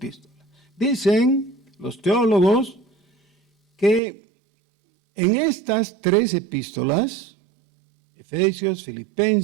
Dicen los teólogos que en estas 3 epístolas, Efesios,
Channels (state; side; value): drops out; left; at 4.0 s